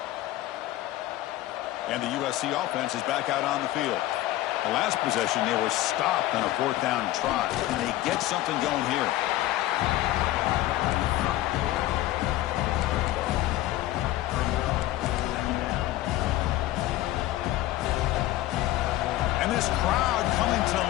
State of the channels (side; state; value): right; quieter; 15.5 dB